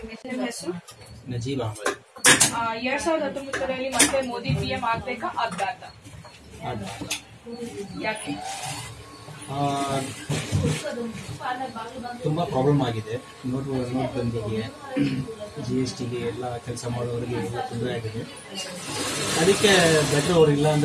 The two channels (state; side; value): identical; both; correlation 1.00